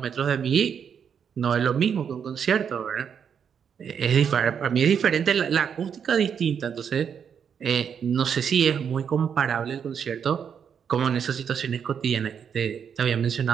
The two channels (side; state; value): left; quieter; 7.5 dB